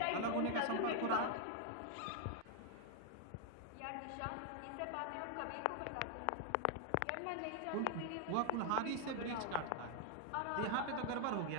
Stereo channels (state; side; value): different; both; correlation 0.00